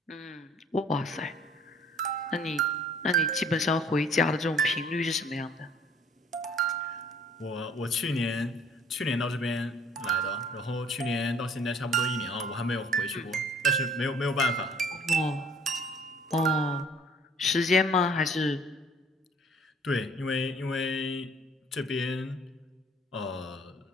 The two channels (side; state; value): both; normal; correlation 0.56